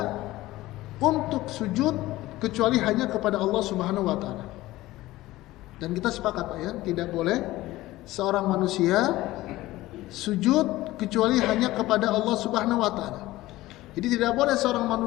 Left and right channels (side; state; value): right; quieter; 17.3 dB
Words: untuk sujud kecuali hanya kepada Allah Subhanahu wa taala. Dan kita sepakat Pak ya, tidak boleh seorang manusia sujud kecuali hanya kepada Allah Subhanahu wa taala. Jadi tidak boleh seorang